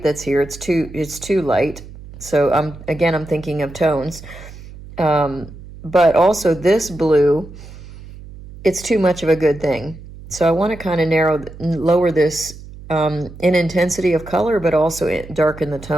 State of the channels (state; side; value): noise; right; hum, 16 dB below the sound